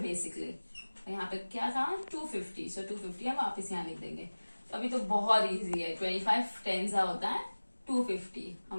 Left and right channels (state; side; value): inverted; both; correlation -1.00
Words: बेसिकली। और यहाँ पे क्या था 250, सो 250 हम वापस यहाँ लिख देंगे। तो अभी तो बहुत इजी है, 25 10 होता है 250,